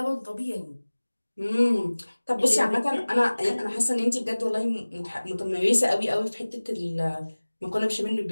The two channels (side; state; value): both; inverted; correlation -1.00